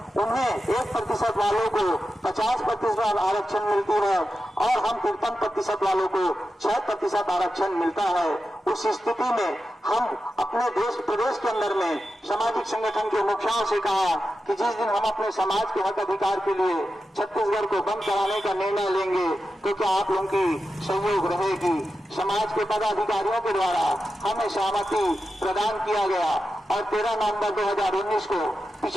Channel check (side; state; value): both; normal; correlation 0.91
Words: उन्हें 1% वालों को 50% आरक्षण मिलती है और हम 53% वालों को 6% आरक्षण मिलता है। उस स्थिति में हम अपने प्रदेश के अंदर में सामाजिक संगठन के मुखियाओं से कहा कि जिस दिन हम अपने समाज के हक अधिकार के लिए छत्तीसगढ़ को बंद कराने का निर्णय लेंगे तो क्या आप लोगों की सहयोग रहेगी। समाज के पदाधिकारियों के द्वारा हमें सहमति प्रदान किया गया और 13 नवंबर 2019 को